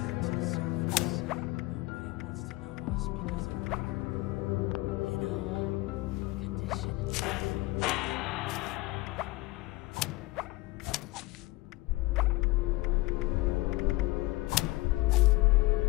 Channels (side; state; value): right; quieter; 20.6 dB